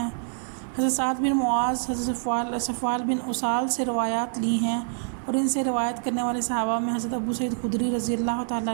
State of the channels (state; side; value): silent; left; 61 dB below the other